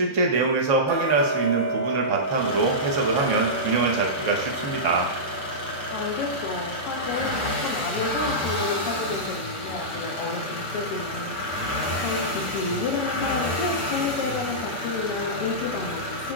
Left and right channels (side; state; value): right; late; 7.2 ms